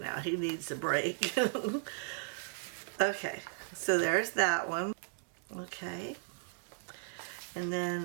He needs a break. Okay, so there's that one. Okay, and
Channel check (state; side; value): silent; left; digital silence